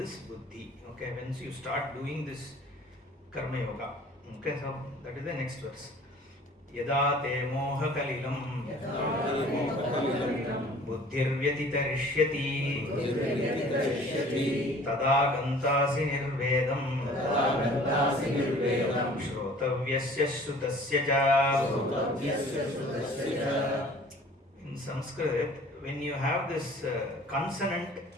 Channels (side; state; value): both; normal; correlation 0.49